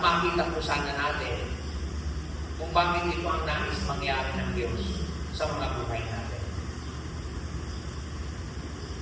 makita po sana natin kung bakit ito ang nais mangyari ng Diyos sa mga buhay natin.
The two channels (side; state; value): both; identical; correlation 1.00